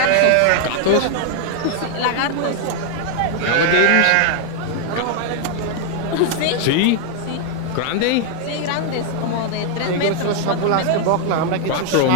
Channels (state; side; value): different; both; correlation 0.00